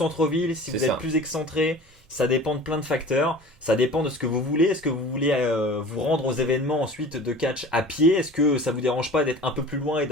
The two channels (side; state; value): both; normal; correlation 0.40